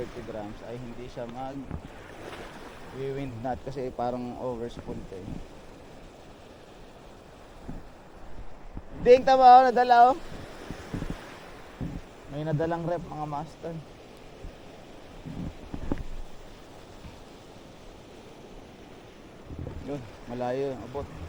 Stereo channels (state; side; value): identical; both; correlation 1.00